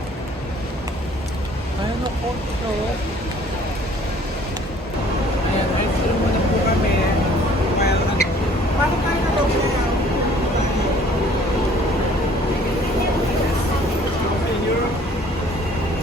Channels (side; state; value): both; normal; correlation 0.55